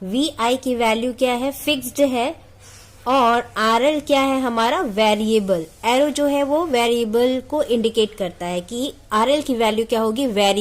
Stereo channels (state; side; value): identical; both; correlation 1.00